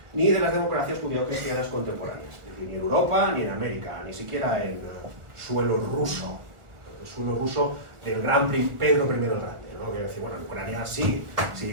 ni de las democracias judío-cristianas contemporáneas, ni en Europa, ni en América, ni siquiera en suelo ruso del gran Pedro I el Grande, ¿no? Que decir, bueno, en Ucrania sí,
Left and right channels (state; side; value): late; left; 1.4 ms